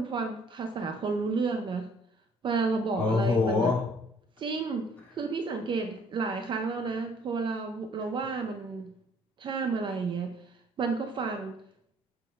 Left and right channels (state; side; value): normal; both; correlation 0.59